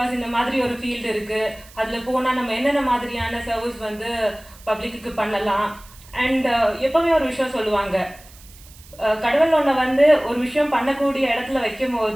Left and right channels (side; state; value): right; noise; hiss, 23 dB below the sound